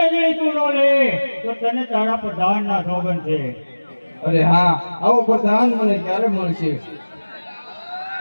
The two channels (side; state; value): both; inverted; correlation -1.00